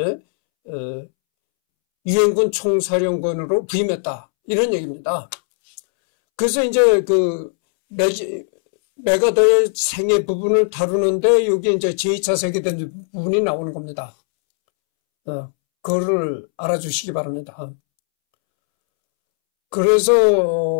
유엔군 총사령관으로 부임했다. 이런 얘기입니다. 그래서 이제 메가더의 생애 부분을 다루는데 여기 이제 제2차 세계대전 부분이 나오는 겁니다. 그거를 알아주시기 바랍니다.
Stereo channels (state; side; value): silent; right; 67 dB below the other